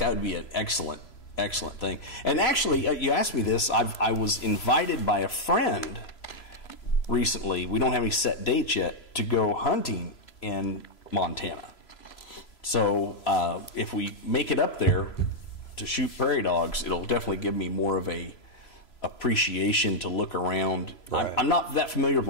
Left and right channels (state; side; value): late; right; 3.0 ms